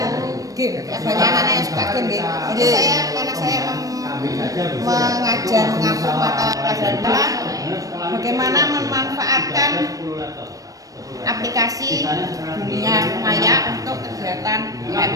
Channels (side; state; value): left; late; 0.17 ms